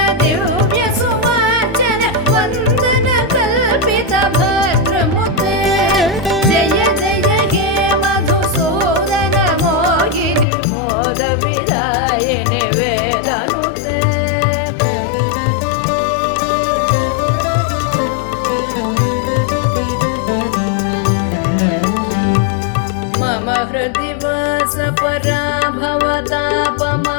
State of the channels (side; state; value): right; drops out; at 10.5 s